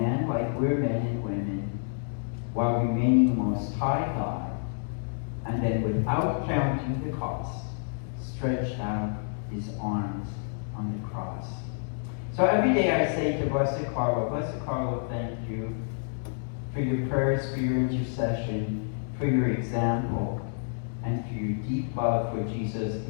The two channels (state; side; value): silent; right; digital silence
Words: like we're men and women, while remaining Most High God, and then without counting the cost, stretched out His arms on the cross. So every day I say to Blessed Carlo, thank you for your prayers, for your intercession, for your example, and for your deep love for Jesus